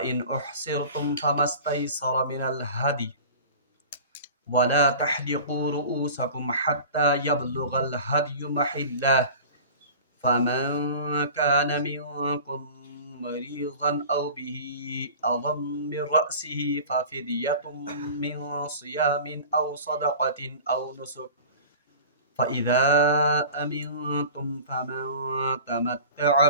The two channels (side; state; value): both; inverted; correlation -0.39